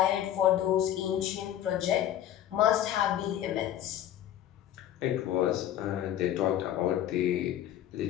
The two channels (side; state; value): right; quieter; 11.6 dB